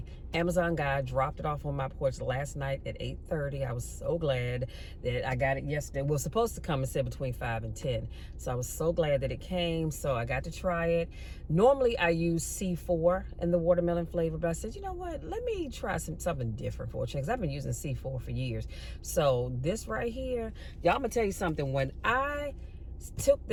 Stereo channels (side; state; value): both; identical; correlation 1.00